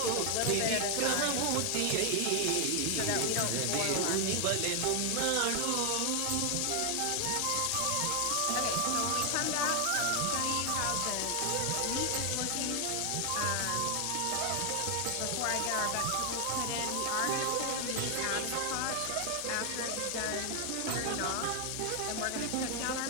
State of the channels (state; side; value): different; both; correlation 0.00